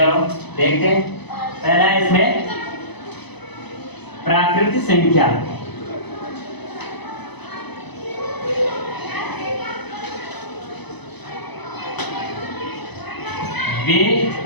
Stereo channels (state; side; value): late; right; 0.99 ms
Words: देखते हैं, पहला है इसमें प्राकृत संख्या। वे